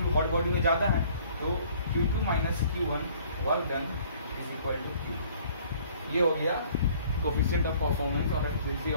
hot body में ज्यादा है तो Q2 minus Q1 work done is equal to Q। ये हो गया कोफिशिएंट ऑफ परफॉर्मेंस और efficiency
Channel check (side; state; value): both; inverted; correlation -0.56